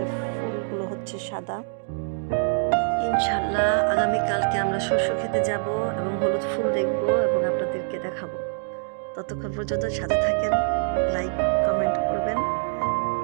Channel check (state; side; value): silent; left; digital silence